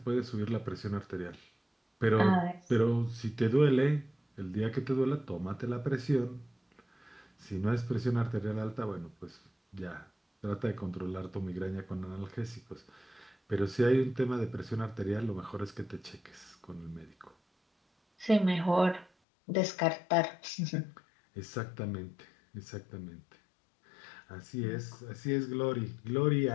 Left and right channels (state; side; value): drops out; right; at 19.1 s